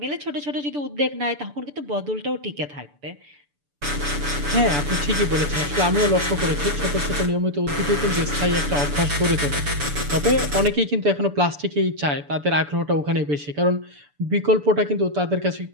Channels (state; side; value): late; left; 6.9 ms